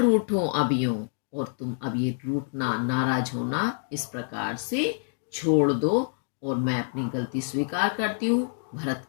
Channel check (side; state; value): right; silent; 60 dB below the other